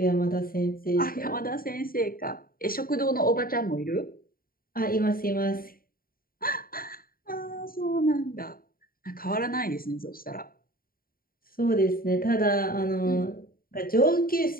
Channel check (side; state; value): right; late; 0.42 ms